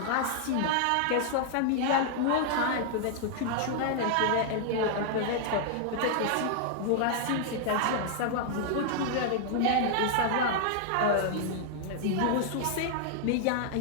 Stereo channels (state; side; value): different; both; correlation -0.01